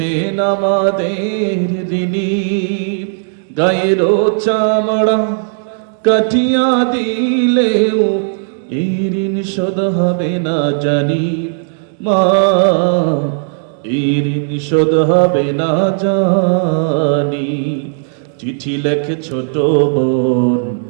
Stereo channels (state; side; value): silent; left; digital silence